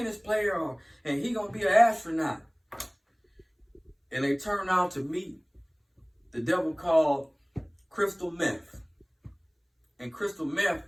player and he going to be an astronaut. And they turn out to meet the devil called crystal meth. And crystal meth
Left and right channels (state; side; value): identical; both; correlation 1.00